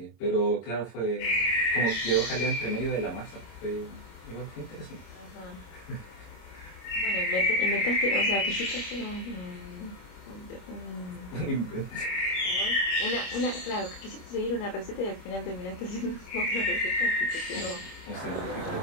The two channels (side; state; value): right; late; 26 ms